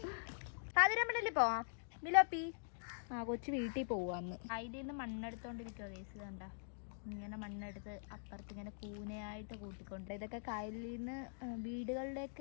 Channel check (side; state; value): right; silent; digital silence